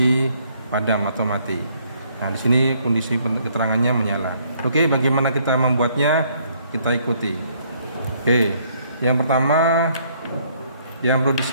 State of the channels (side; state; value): both; inverted; correlation -0.66